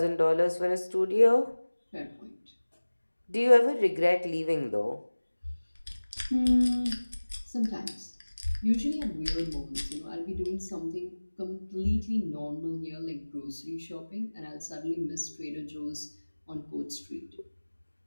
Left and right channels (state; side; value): inverted; both; correlation -1.00